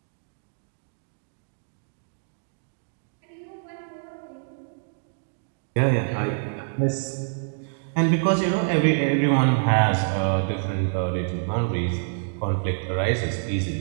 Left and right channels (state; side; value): silent; left; digital silence